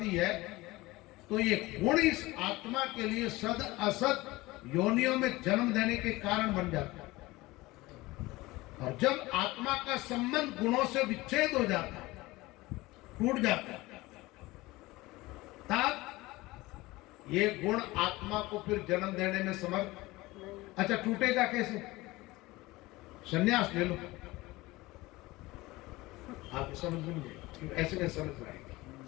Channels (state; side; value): quieter; right; 20.2 dB